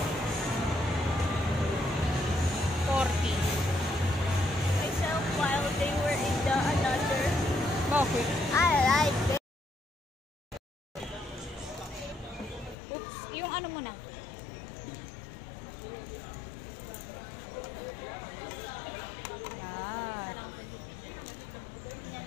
40. Myself while they were in the another. Bakit? I like it. Oops, yung ano muna. Yan.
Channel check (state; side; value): drops out; right; at 12.8 s